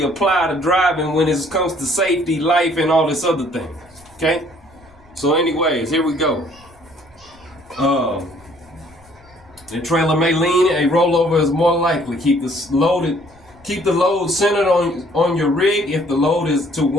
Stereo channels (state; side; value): noise; left; rumble, 28 dB below the sound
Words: apply to driving when it comes to safety, life, and all this other thing. Okay. So, anyways, here we go. The trailer may lean. A rollover is more likely. Keep the load centered on your rig if the load is to